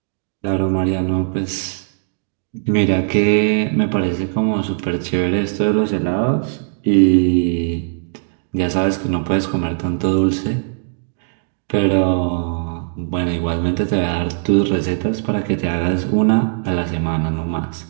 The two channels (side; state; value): left; silent; digital silence